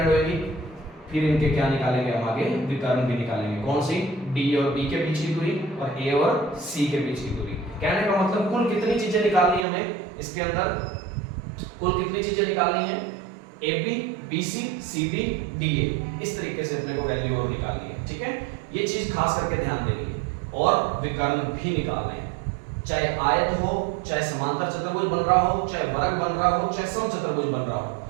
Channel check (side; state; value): left; drops out; at 9.7 s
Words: होएगी। फिर इनके क्या निकालेंगे हम आगे, विकर्ण भी निकालेंगे। कौन सी, डी और बी के बीच की दूरी और ए और सी के बीच की दूरी। कहने का मतलब कुल कितनी चीजें निकालनी है हमें इसके अंदर, कुल कितनी चीजें निकालनी है, A B, B C, C D, D A. इस तरीके से अपने को वैल्यू और निकालनी है। ठीक है, ये चीज खास करके ध्यान देनी है। और विकर्ण भी निकालने हैं, चाहे आयत हो, चाहे समांतर चतुर्भुज बन रहा हो, चाहे वर्ग बन रहा हो, चाहे समचतुर्भुज बन रहा हो।